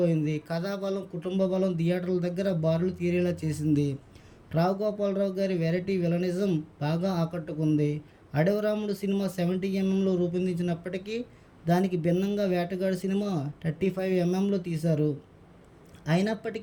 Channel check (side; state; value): both; identical; correlation 1.00